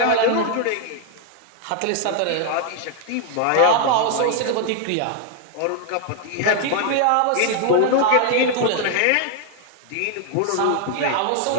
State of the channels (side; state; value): both; different; correlation 0.00